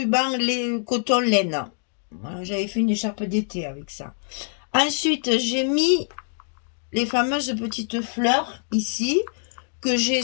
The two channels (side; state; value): right; silent; 62 dB below the other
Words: coton laine. Voilà, j'avais fait une écharpe d'été avec ça. Ensuite, j'ai mis les fameuses petites fleurs ici, que j'ai